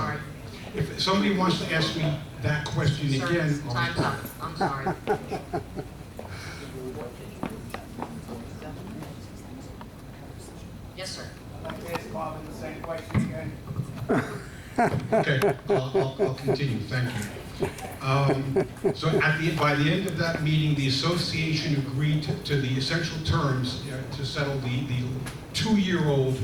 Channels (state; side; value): identical; both; correlation 1.00